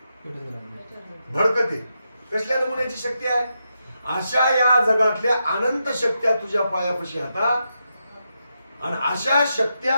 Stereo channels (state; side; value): inverted; both; correlation -0.85